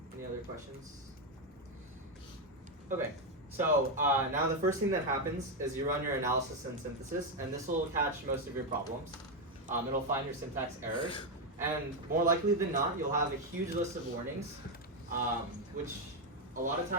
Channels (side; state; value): both; normal; correlation 0.05